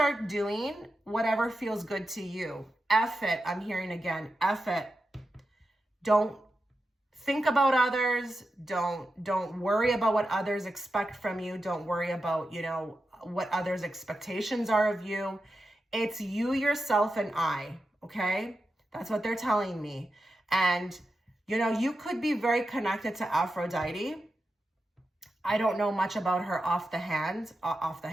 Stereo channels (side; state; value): both; normal; correlation 0.90